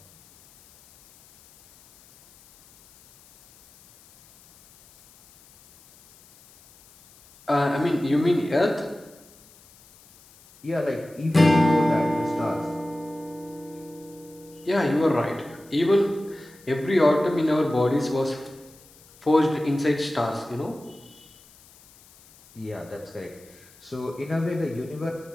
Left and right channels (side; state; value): left; noise; hiss, 26 dB below the sound